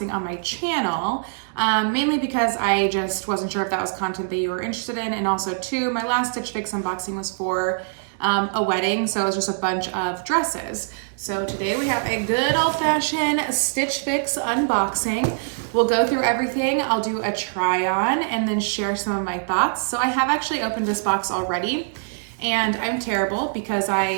on my channel, mainly because I just wasn't sure if that was content that you were interested in. And also too, my last Stitch Fix unboxing was for a wedding, so it was just a bunch of dresses. So today we have a good old-fashioned Stitch Fix unboxing. We'll go through everything. I'll do a try on and then share some of my thoughts. So I have actually opened this box already, and I'm terrible because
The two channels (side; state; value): left; silent; digital silence